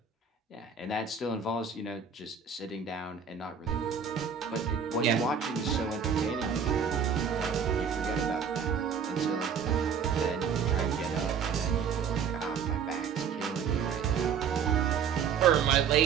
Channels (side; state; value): left; quieter; 6.8 dB